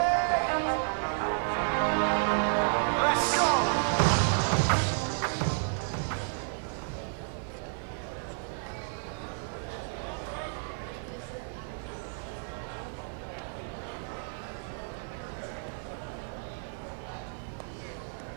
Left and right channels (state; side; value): silent; left; 57 dB below the other